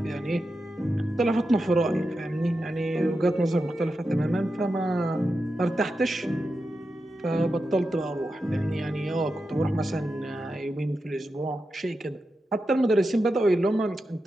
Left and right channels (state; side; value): normal; both; correlation 0.89